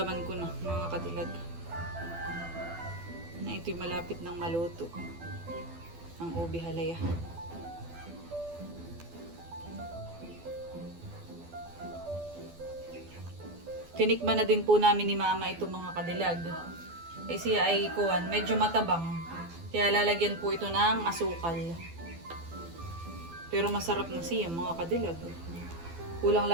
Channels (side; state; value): left; late; 12 ms